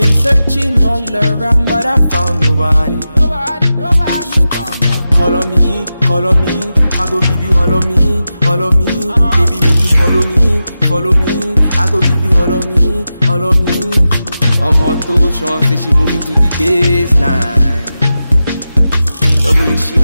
searching all around but I found nobody. Nobody. Call on me, I go give you all of me, all of me. Baby, make you follow me, follow me. I go give you all of me, all of me. Omoto Sean say she moving to the baseline. The way she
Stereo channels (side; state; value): both; inverted; correlation -0.92